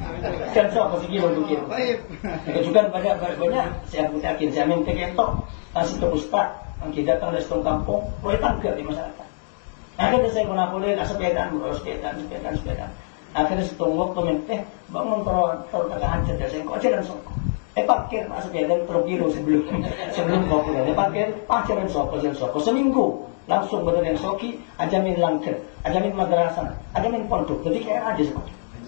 jalan sopo sih kilo mungkin juga banyak saya yakin saya minta kento kasih ke ustad mungkin datang dari setengah kampung boleh tangga di masyarakat akhirnya saya boleh sepedaan akhirnya setengah waktu minta bangun terus tengah hancur dan saya kok jalan sopo parkir sepedaan terus kilo sebelum kopi parkir jalan sopo seminggu langsung betul yang soki, ajamin langker, ajamin madrasah, ajamin pondok. Jadi kayak aja seperti.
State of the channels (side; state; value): right; silent; digital silence